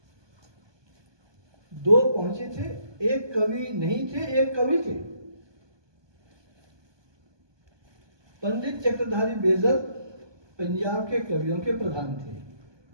दो पहुंचे थे, एक कवि नहीं थे, एक कवि थे। पंडित चक्रधारी बेजर पंजाब के कवियों के प्रधान थे।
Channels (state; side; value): late; left; 1.2 ms